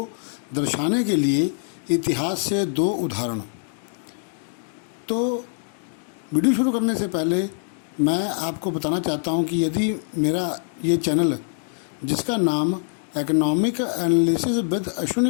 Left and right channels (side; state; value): right; silent; digital silence